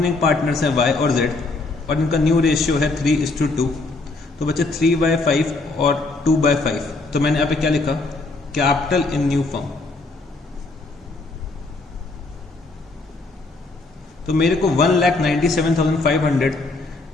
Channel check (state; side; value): quieter; right; 3.4 dB